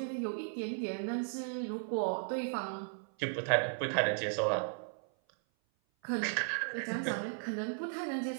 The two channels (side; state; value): left; silent; 54 dB below the other